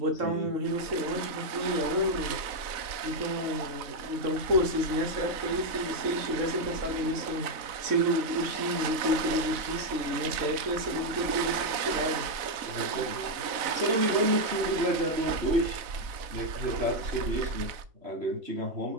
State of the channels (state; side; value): late; left; 3.9 ms